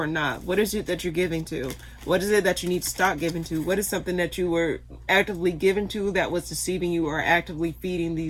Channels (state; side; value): identical; both; correlation 1.00